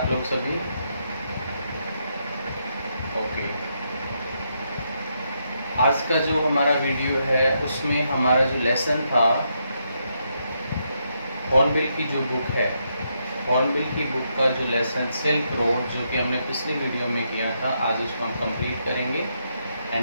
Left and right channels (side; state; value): both; inverted; correlation -0.79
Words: लोग सभी? ओके, आज का जो हमारा वीडियो है उसमें हमारा जो लेसन था हॉर्नबिल की जो बुक है, हॉर्नबिल की बुक का जो लेसन सिल्क रोड जो कि हमने पिछली वीडियो में किया था, आज उसको हम कंप्लीट करेंगे